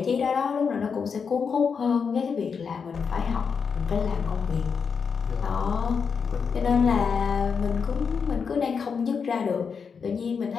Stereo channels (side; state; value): right; quieter; 6.0 dB